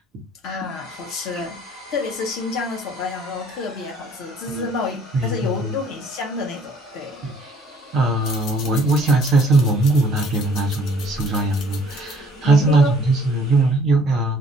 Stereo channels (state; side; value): normal; both; correlation 0.58